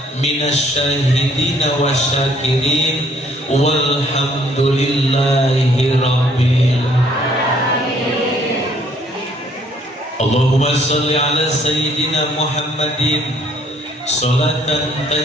minasyahidina wasyakirin walhamdulillahi rabbil alamin. Allahumma shalli ala sayyidina Muhammadin salatan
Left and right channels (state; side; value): normal; both; correlation 0.63